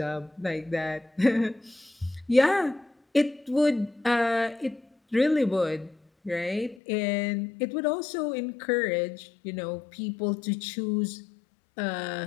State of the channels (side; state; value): right; drops out; at 6.8 s